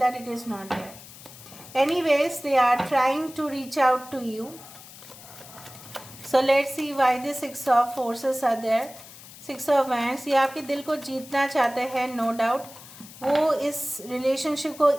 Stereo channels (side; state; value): left; noise; hiss, 18 dB below the sound